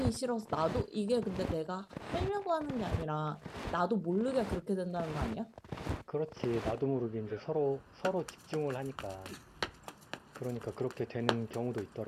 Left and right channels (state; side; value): identical; both; correlation 1.00